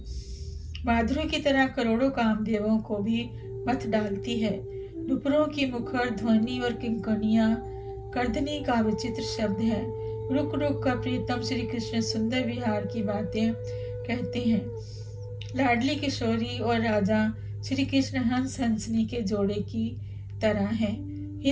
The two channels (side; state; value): both; identical; correlation 1.00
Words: माधुरी की तरह करोड़ों कामदेवों को भी मत डालती है। नुपुरों की मुखर ध्वनि और किंकनियां कर्दनी का विचित्र शब्द है। रुक रुक कर प्रीतम श्री कृष्ण सुंदर विहार की बातें कहते हैं। लाडली किशोरी और राजा श्री कृष्ण हंस हंसनी के जोड़े की तरह हैं।